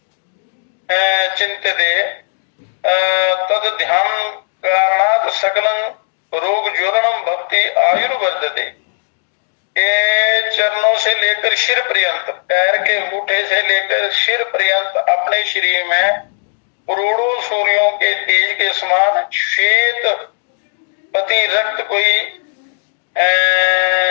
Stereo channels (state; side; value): silent; right; digital silence